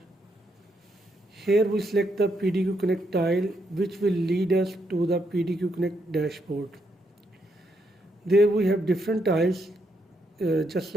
Here we select the PDQ Connect tile, which will lead us to the PDQ Connect dashboard. There we have different tiles, just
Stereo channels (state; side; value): normal; both; correlation 0.78